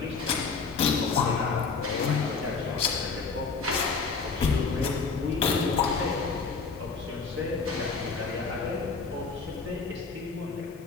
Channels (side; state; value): right; quieter; 4.8 dB